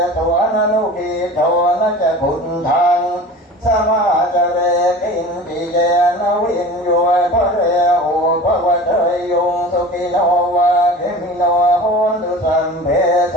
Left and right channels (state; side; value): normal; both; correlation 0.38